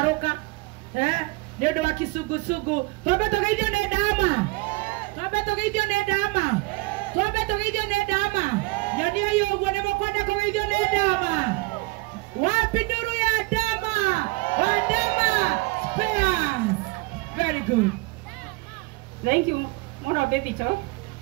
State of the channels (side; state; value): left; quieter; 25.1 dB